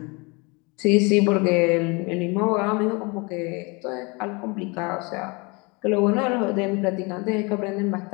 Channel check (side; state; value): right; quieter; 28.6 dB